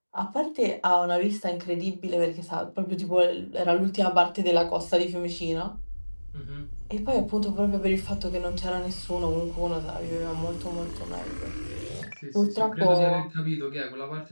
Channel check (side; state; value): both; inverted; correlation -1.00